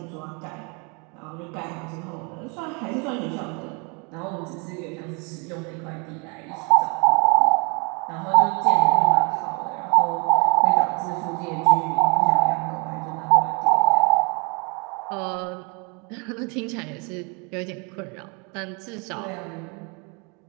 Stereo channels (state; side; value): quieter; left; 32.8 dB